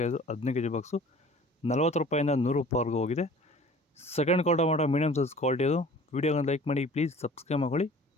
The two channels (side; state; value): both; normal; correlation 0.47